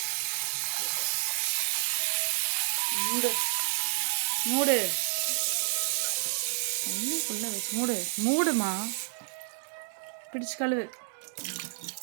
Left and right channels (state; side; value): silent; left; 58 dB below the other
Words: மூடு தண்ணிக்குள்ள வச்சு மூடுமா, பிடிச்சு கழுவு,